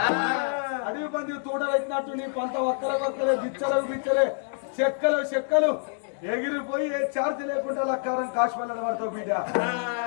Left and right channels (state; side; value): silent; right; 60 dB below the other